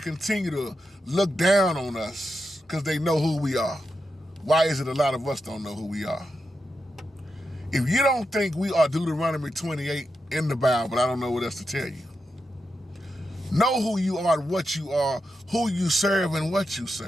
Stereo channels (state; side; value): normal; both; correlation 0.87